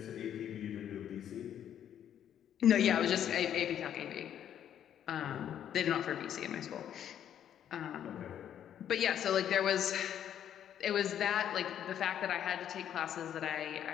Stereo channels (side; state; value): right; quieter; 9.9 dB